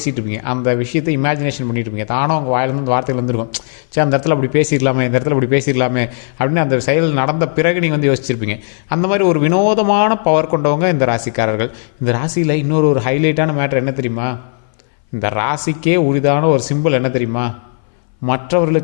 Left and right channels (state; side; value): silent; right; 64 dB below the other